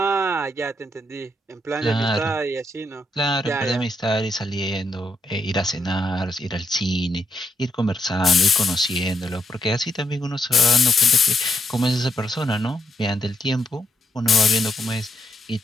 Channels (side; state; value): both; normal; correlation 0.79